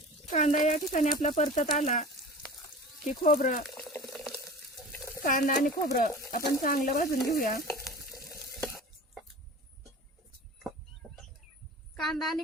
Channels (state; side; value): normal; both; correlation 0.37